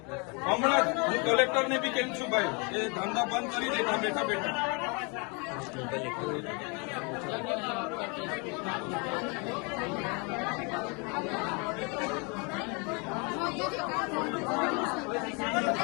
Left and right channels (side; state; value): right; quieter; 32.3 dB